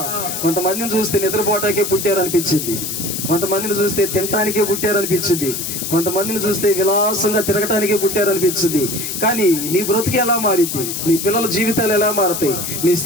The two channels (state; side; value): noise; left; hiss, 4 dB below the sound